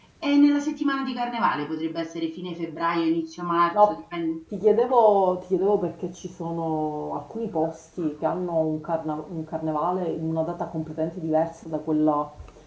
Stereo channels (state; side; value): identical; both; correlation 1.00